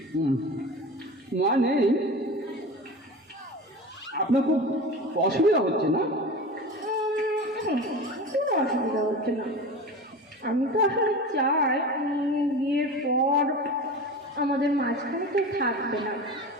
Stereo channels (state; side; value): normal; both; correlation 0.31